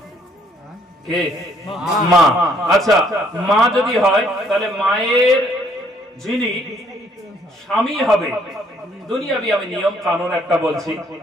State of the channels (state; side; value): normal; both; correlation 0.65